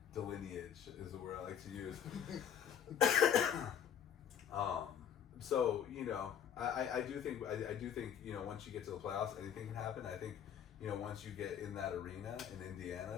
Delineage is the word I like to use. So I do think once you get to the playoffs, anything can happen. I think once you get in that arena in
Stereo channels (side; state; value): right; quieter; 8.8 dB